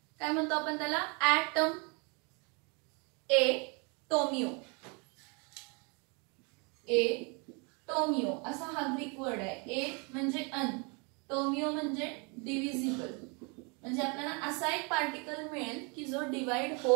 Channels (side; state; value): left; quieter; 32.7 dB